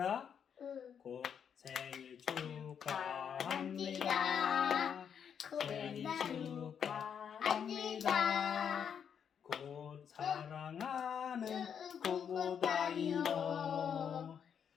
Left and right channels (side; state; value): right; quieter; 7.8 dB